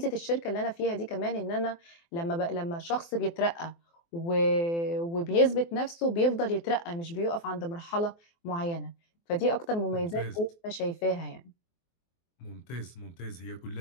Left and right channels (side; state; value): right; late; 24 ms